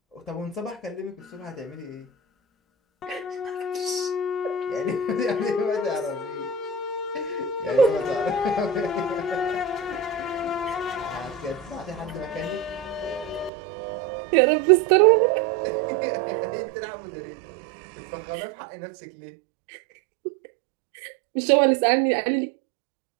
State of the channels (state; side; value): drops out; left; at 13.5 s